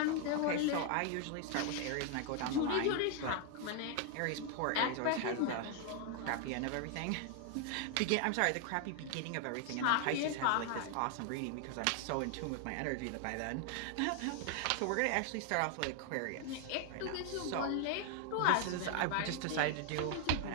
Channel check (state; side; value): different; both; correlation 0.00